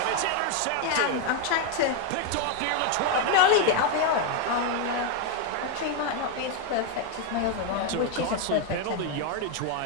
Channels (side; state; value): both; different; correlation 0.01